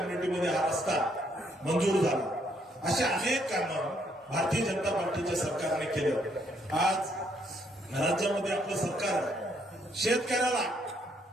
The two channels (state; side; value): normal; both; correlation 0.71